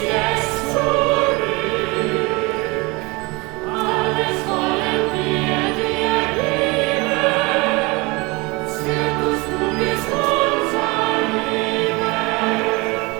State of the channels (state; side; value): quieter; left; 25.6 dB